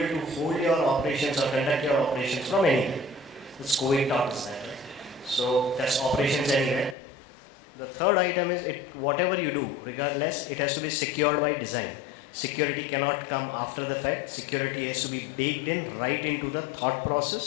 to hold your operations or conduct your operations from anywhere. This COVID taught us that, right? So that's operations anywhere. The third item is whatever you do, regardless, it has to be secured by design. Security cannot come after the fact. Security has to be baked in right into the thought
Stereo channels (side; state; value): right; drops out; at 7.0 s